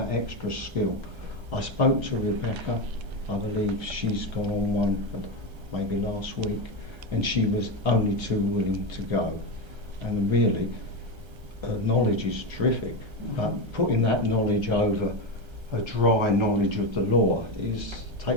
extra skill. I spoke to Rebecca, I believe she's gone on one maybe last week, and she was only too willing to go. And really, her knowledge is terrific, but putting that knowledge over a dry knowledge of the law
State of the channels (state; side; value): late; left; 1.3 ms